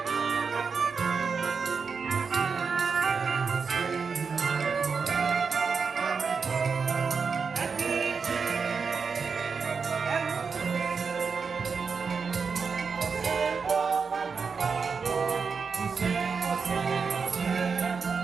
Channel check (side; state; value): left; quieter; 5.4 dB